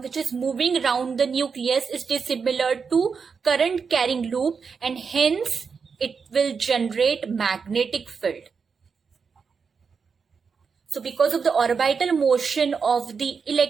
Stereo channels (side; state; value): left; quieter; 5.7 dB